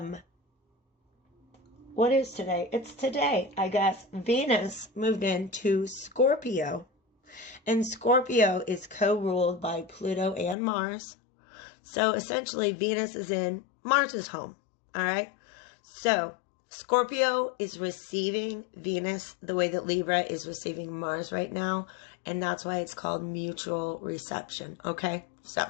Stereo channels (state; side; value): drops out; right; at 10.6 s